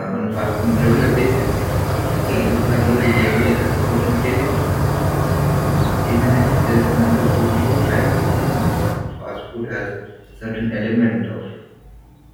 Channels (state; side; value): identical; both; correlation 1.00